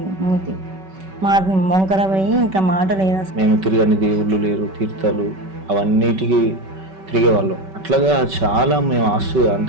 మూతి. మాట మొంకర పోయి ఇంకా మాట లేదు అసలు. మేము తిరగని దేవుళ్ళు లేరు, తీర్థాలు అవన్నిటికీ తిరిగేవాళ్ళం. అట్లాగా చాలా మేము ఆస్తు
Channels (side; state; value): left; late; 5.3 ms